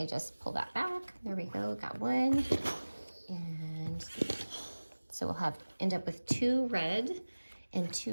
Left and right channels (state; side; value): inverted; both; correlation -1.00